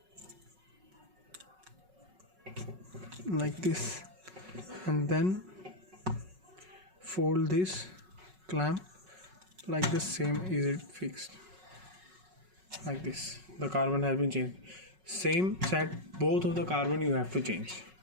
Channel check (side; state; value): left; late; 5.4 ms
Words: like this, and then fold this clamp like the same. Is it fixed like this? The carbon has been changed. Same set, both of the carbon you have to change,